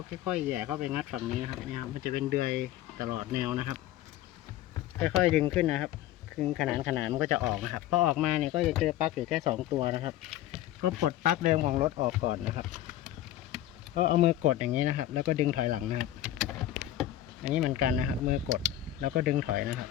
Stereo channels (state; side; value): quieter; right; 13.1 dB